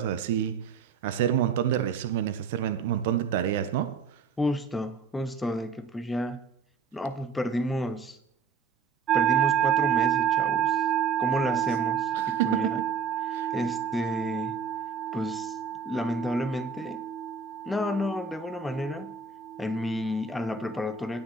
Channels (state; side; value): quieter; left; 5.4 dB